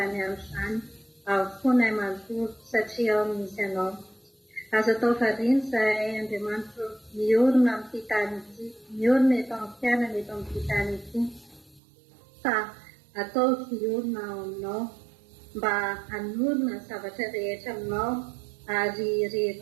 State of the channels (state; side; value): drops out; left; at 11.8 s